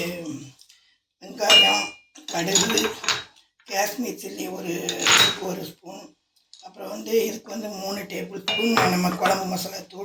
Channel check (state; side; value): identical; both; correlation 1.00